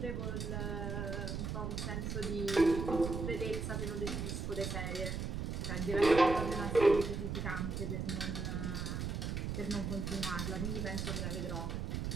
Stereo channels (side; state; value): right; noise; rumble, 2 dB below the sound